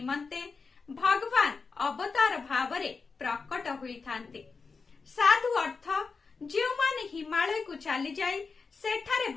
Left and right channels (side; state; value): right; quieter; 4.7 dB